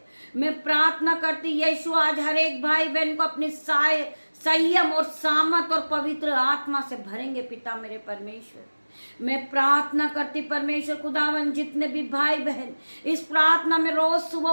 मैं प्रार्थना करती, यीशु आज हर एक भाई बहन को अपनी संयम और सामर्थ और पवित्र आत्मा से भरेंगे पिता मेरे परमेश्वर। मैं प्रार्थना करती परमेश्वर खुदावन, जितने भी भाई बहन इस प्रार्थना में रोज सुबह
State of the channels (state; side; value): inverted; both; correlation -1.00